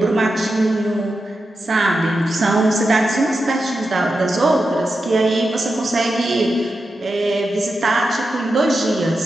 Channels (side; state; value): both; normal; correlation 0.89